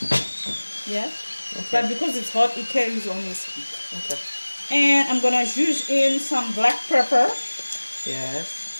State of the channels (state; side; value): inverted; both; correlation -1.00